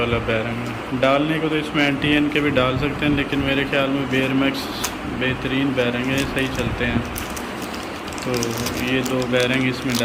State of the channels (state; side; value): identical; both; correlation 1.00